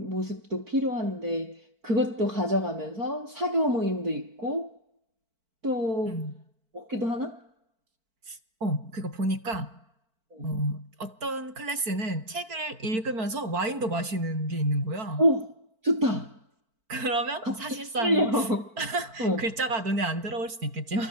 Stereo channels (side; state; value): left; late; 4.5 ms